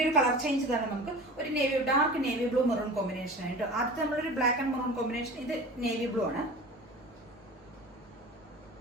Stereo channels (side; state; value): both; normal; correlation 0.37